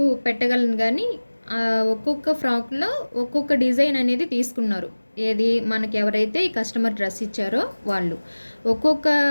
పెట్టగలను, కానీ ఒక్కొక్క ఫ్రాక్లో ఒక్కొక్క డిజైన్ అనేది తీసుకున్నారు. ఏది మనకి ఎవరైతే ఈ కస్టమర్ డ్రెస్ ఇచ్చారో వాళ్ళు ఒక్కొక్క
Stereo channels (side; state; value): both; inverted; correlation -1.00